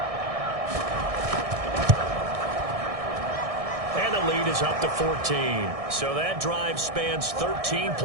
lead is up to 14. So that drive spans 13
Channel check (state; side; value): late; left; 1.6 ms